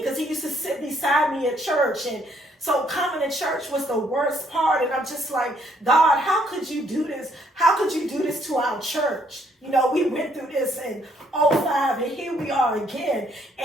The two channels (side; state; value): both; normal; correlation 0.68